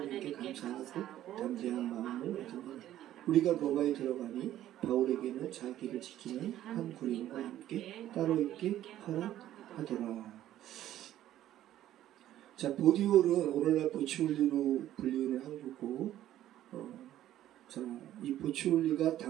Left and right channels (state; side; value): quieter; left; 12.8 dB